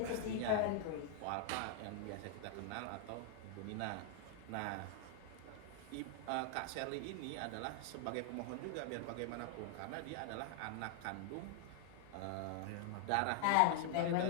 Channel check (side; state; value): both; different; correlation 0.00